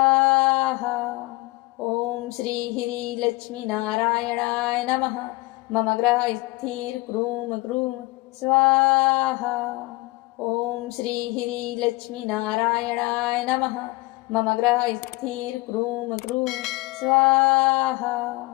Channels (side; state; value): right; quieter; 21.8 dB